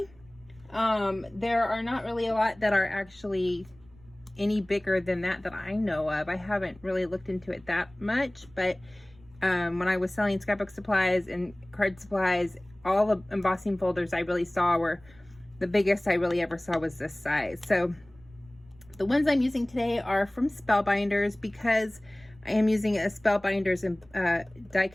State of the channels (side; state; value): right; noise; rumble, 27 dB below the sound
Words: There are not really a lot that are actually any bigger than that I know of. I haven't really looked into it that much, but when I was selling scrapbook supplies and card supplies, all the embossing folders I really saw were, the biggest I really ever saw was this size. So the ones I'm using today are from Spellbinders, because I am using a Spellbinders die